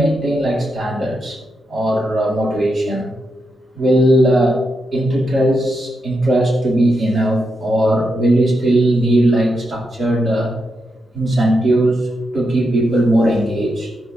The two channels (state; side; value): normal; both; correlation 0.84